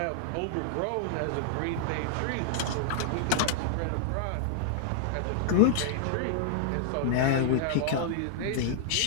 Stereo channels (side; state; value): both; different; correlation -0.01